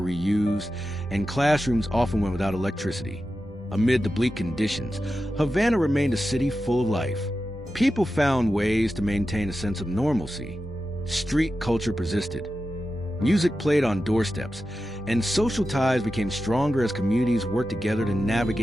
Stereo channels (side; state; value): both; normal; correlation 0.91